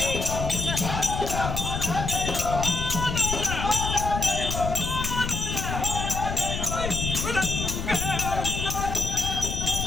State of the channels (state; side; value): noise; left; rumble, 3 dB below the sound